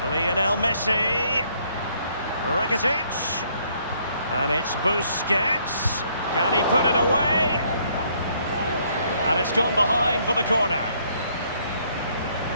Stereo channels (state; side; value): inverted; both; correlation -0.67